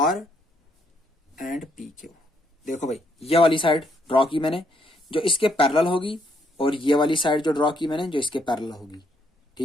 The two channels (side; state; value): both; normal; correlation 0.72